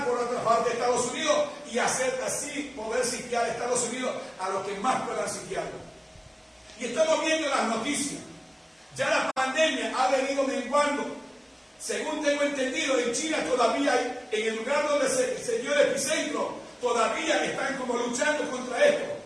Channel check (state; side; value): identical; both; correlation 1.00